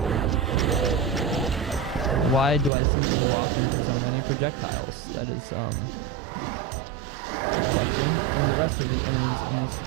Why do I simply walk into so many projectiles? That is, a question. And the rest of the enemies in this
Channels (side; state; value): left; drops out; at 2.7 s